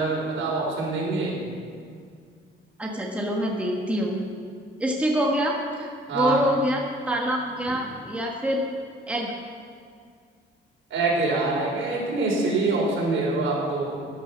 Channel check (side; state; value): both; normal; correlation 0.51